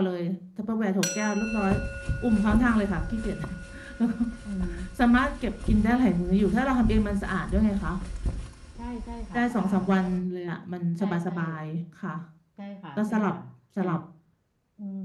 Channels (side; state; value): both; identical; correlation 1.00